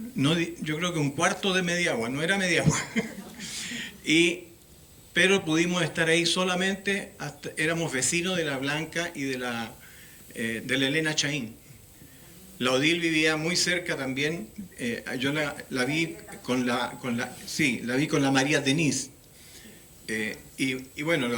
creo que un cuarto de Mediagua, no era Mediagua. Pero pudimos estar ahí solamente, éramos vecinos de la Blanca y de la Elena Chaín. La Odil vivía muy cerca también, yo la vi con la María Denise. Y bueno, la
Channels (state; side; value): identical; both; correlation 1.00